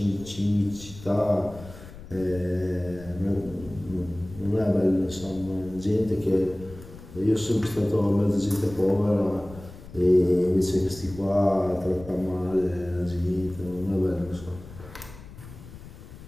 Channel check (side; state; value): left; noise; rumble, 16 dB below the sound